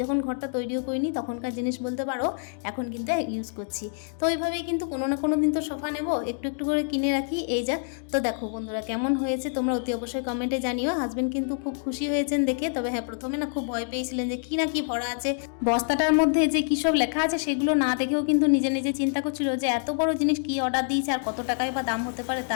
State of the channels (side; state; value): right; silent; digital silence